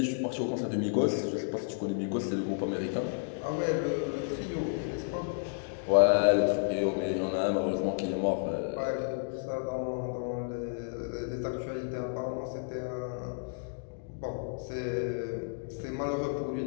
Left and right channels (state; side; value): silent; right; digital silence